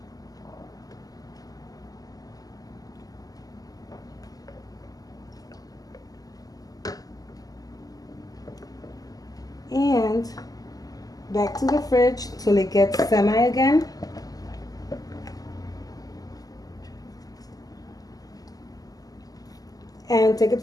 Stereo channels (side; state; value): right; late; 0.17 ms